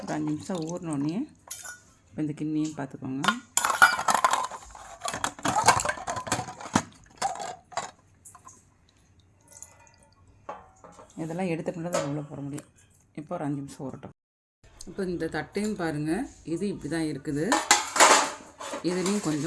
5 நிமிஷம் ஊறினோடனே இப்போ இந்த கிண்ணியும் பார்த்துக்கோங்க. இதெல்லாம் எடுத்துக்கிட்டு தான் உள்ளே போட முடியும். இப்போ ஒரு 5 நிமிஷம் ஊறட்டும். இப்போ இந்த தட்டையும் பாருங்கள், இது இப்படி தான் இருக்குது. இதுலேயும்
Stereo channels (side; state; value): both; identical; correlation 1.00